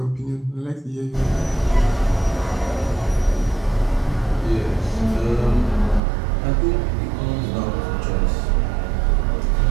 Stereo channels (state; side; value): drops out; left; at 6.0 s